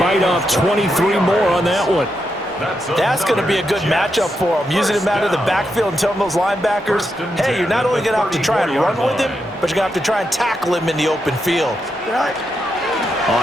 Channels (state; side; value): normal; both; correlation 0.84